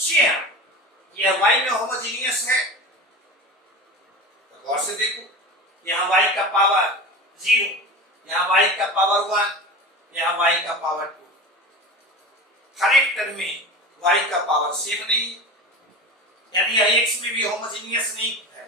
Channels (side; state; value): both; normal; correlation 0.30